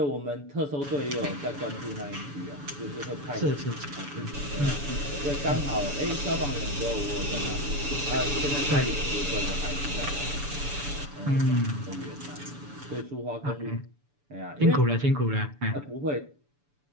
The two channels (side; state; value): left; late; 6.9 ms